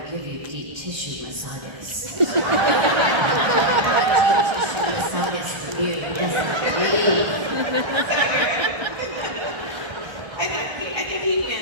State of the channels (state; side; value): late; left; 1.3 ms